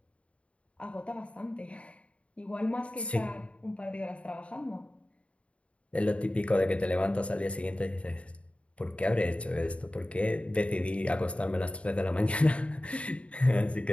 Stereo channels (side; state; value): right; late; 0.062 ms